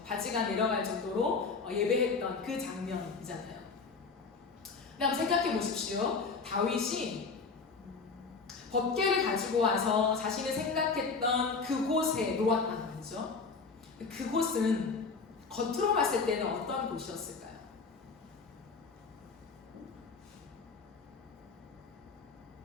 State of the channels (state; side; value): quieter; right; 4.6 dB